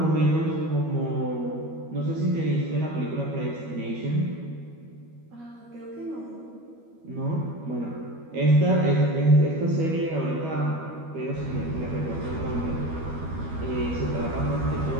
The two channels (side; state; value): left; late; 12 ms